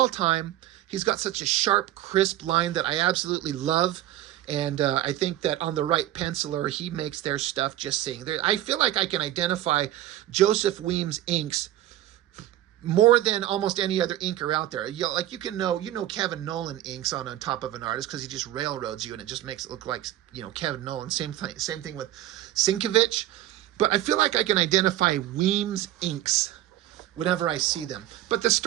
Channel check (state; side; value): quieter; left; 13.6 dB